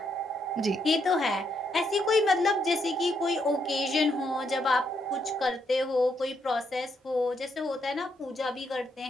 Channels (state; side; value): normal; both; correlation 0.77